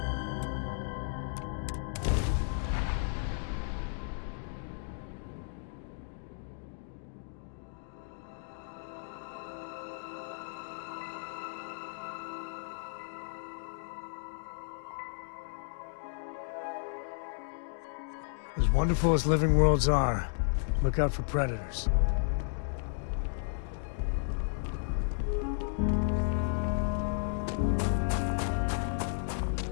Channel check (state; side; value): silent; right; digital silence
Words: As wonderful as living worlds are, look out for predators.